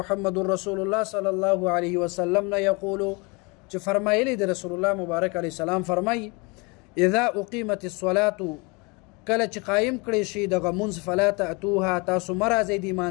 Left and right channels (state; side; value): quieter; right; 28.8 dB